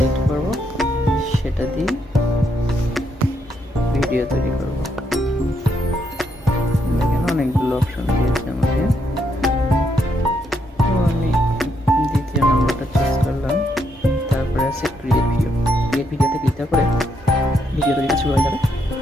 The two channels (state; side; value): normal; both; correlation 0.77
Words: করব সেটা দিয়ে ভিডিও তৈরি করব। দেখেন অনেকগুলো অপশন দিয়েছে আমাকে। তো আমি দ্বিতীয় নম্বরটা চুজ করলাম। তারপরে আছে ক্রিয়েট ভিডিও। ক্রিয়েট ভিডিওতে ক্লিক করে ভিডিও তৈরি শুরু হয়ে যাবে।